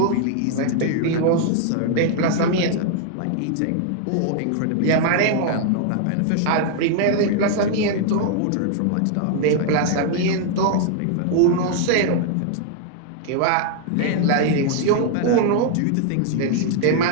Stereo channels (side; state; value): both; different; correlation 0.00